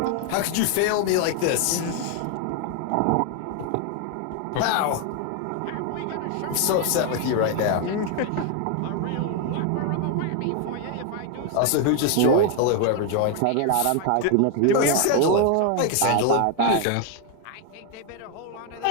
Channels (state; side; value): different; both; correlation 0.01